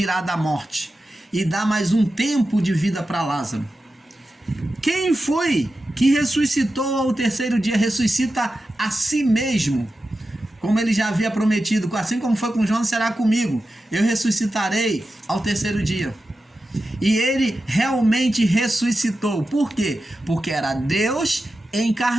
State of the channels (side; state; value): both; normal; correlation 0.92